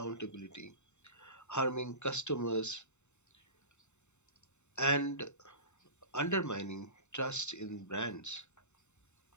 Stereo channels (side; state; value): right; late; 0.83 ms